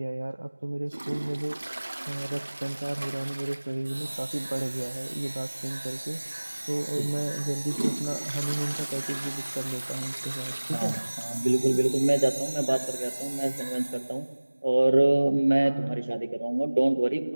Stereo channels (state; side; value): inverted; both; correlation -1.00